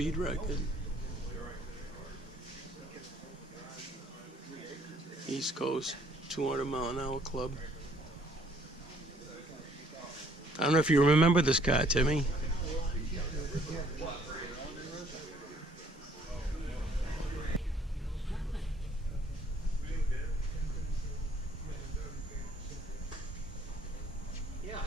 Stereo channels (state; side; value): normal; both; correlation 0.62